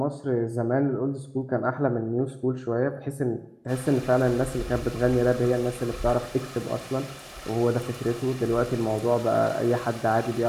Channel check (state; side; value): identical; both; correlation 1.00